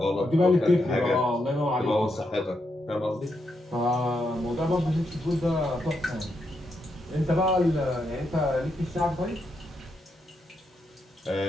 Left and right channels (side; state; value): both; normal; correlation 0.82